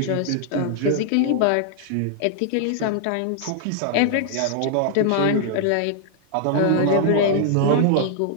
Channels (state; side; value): different; both; correlation 0.00